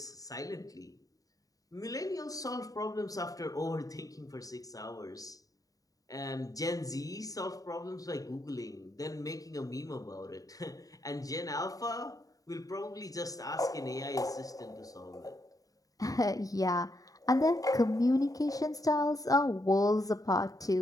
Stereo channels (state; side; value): late; right; 0.17 ms